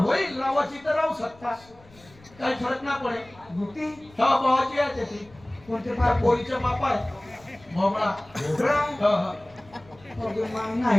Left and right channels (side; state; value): left; noise; rumble, 26 dB below the sound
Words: लावाची तर राहू शकता काही फरक ना पडे गुटी हा भावाची आहे ती कोणते त्या पोरीच्या बाप आहे भोपळा भोपळा? हा, हा. मग